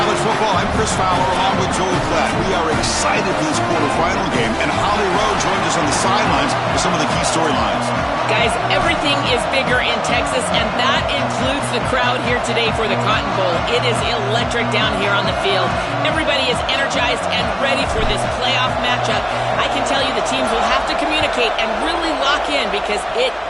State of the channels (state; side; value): identical; both; correlation 1.00